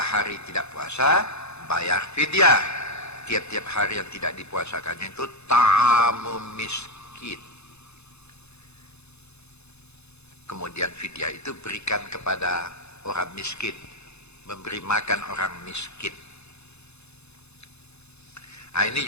tidak puasa, bayar fidyah. Tiap-tiap hari yang tidak dipuasakannya itu ta'amu miskin. Kemudian fidyah itu berikan kepada orang miskin, memberi makan orang miskin. Nah, ini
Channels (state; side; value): late; right; 0.80 ms